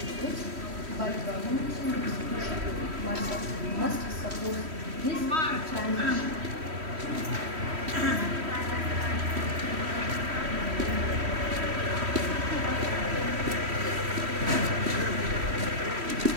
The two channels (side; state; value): left; late; 3.1 ms